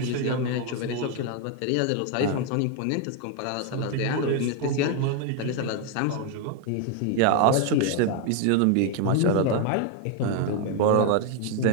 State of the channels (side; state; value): both; different; correlation 0.01